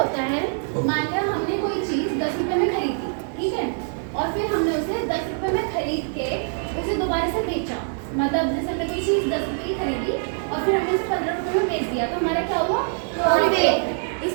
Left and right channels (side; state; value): left; silent; 60 dB below the other